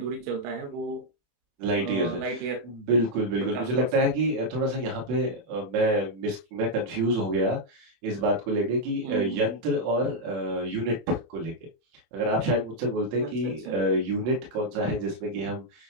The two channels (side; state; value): left; late; 24 ms